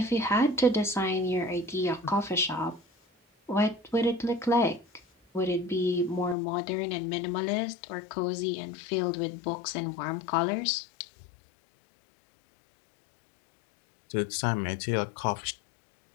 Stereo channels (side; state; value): right; drops out; at 6.4 s